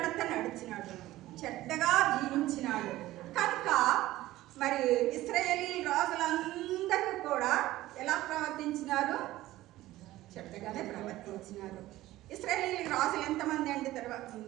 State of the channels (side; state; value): left; quieter; 16.2 dB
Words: నడిచినాడు, చెడ్డగా జీవించినాడు. కనుక మరి ఇశ్రాయేలీ రాజులందరూ కూడా ఎలా ప్రవర్తించినారు? చెడ్డగానే ప్రవర్తించినారు. ఇశ్రాయేలీ రాజులు ఎంతమంది అంటే తర్వాత